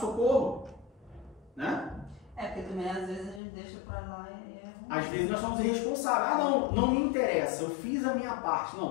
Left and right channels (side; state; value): right; drops out; at 3.4 s